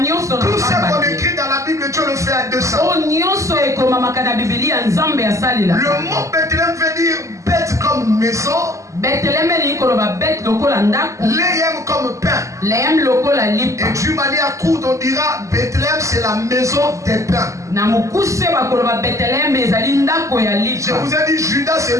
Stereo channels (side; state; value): left; late; 0.15 ms